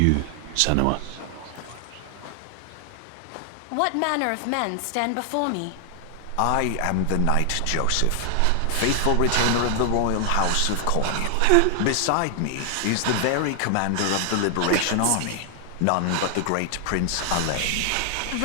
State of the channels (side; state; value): both; different; correlation 0.00